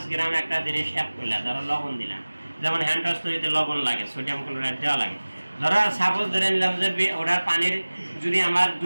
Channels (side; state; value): both; inverted; correlation -1.00